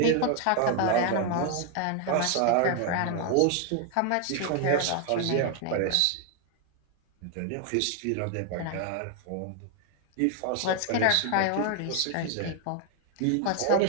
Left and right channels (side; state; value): both; different; correlation 0.00